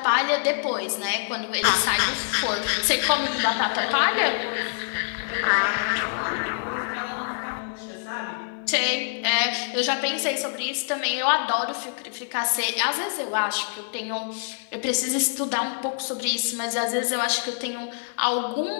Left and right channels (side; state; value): right; silent; 61 dB below the other